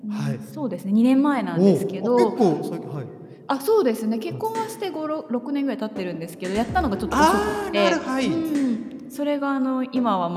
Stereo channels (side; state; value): both; identical; correlation 1.00